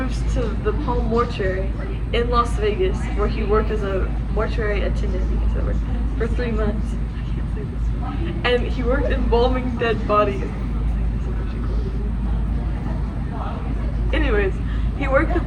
to the Palm Mortuary in Las Vegas, where he worked as a mortuary attendant for 3 months. And he worked embalming dead bodies. Anyways, he worked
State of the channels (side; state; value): both; identical; correlation 1.00